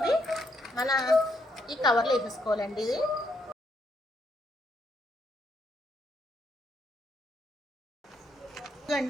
మన ఈ కవర్లో వేసేసుకోవాలండి. ఇది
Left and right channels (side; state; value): both; normal; correlation 0.75